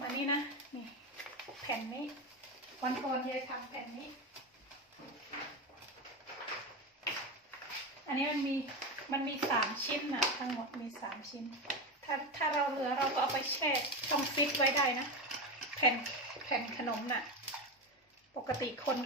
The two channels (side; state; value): both; normal; correlation 0.17